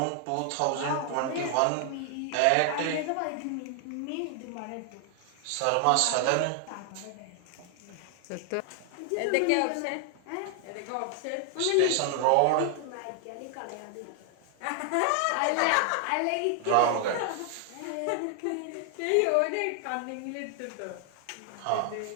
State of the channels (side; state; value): both; different; correlation 0.00